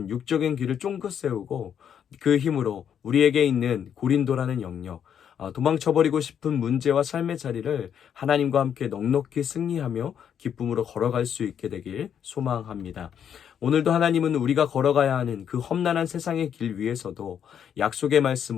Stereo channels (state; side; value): quieter; right; 8.6 dB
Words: 육적인 길을 쫑긋 세우고 그 힘으로 우리에게 있는 고린도라는 영역, 도망쳐버리고 싶은 문제와 삶의 자리를 하나님과 함께 넉넉히 승리하며 기쁨으로 걸어갈 수 있게 되길 소망합니다. 오늘도 하나님은 우리가 걸어가야 하는 그 험난한 세상의 길 위에서도 약속의